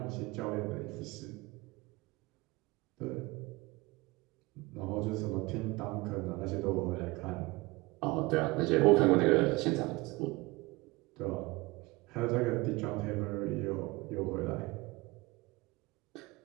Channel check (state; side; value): quieter; left; 22.6 dB